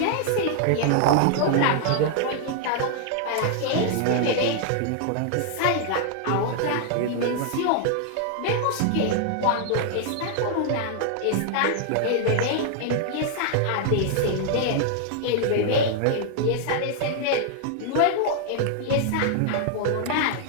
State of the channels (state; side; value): different; both; correlation 0.00